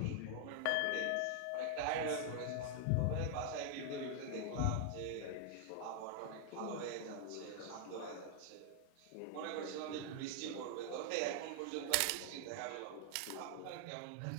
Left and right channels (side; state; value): both; different; correlation 0.00